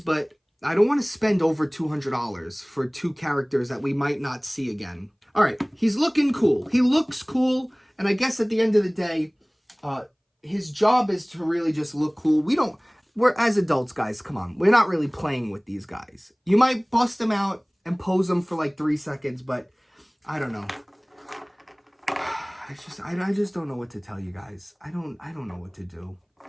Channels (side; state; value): both; identical; correlation 1.00